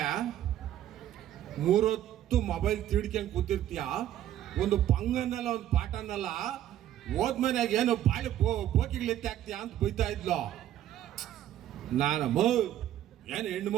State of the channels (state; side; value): quieter; left; 12.0 dB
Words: 3 ಹೊತ್ತು ಮೊಬೈಲ್ ತಿಡ್ಕೊಂಡು ಕೂತಿರ್ತೀಯ, ಒಂದು ಪಂಗನ್ನಲ್ಲ ಒಂದು ಪಾಠನಲ್ಲ, ಹೋದ್ಮನ್ಯಾಗ ಏನು ಬಾಳಿ ಬೋಕಿಗಳಿತ್ತೆ ಆಗ್ತೀಯ ಅಂತ ಬೈತಾ ಇದ್ಲು. ನಾನು ಏನು ಹೆಣ್ಣು